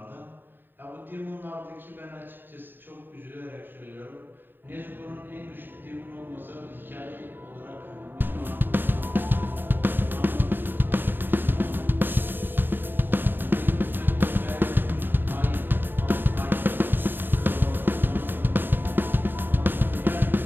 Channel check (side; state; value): left; late; 0.095 ms